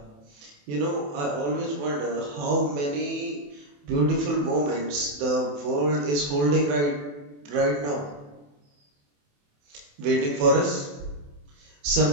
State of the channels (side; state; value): left; late; 28 ms